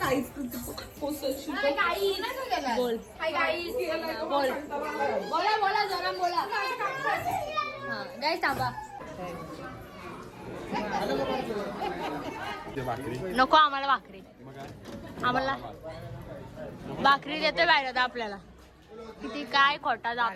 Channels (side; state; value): both; identical; correlation 1.00